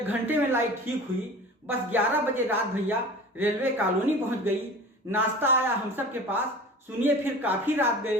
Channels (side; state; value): both; normal; correlation 0.38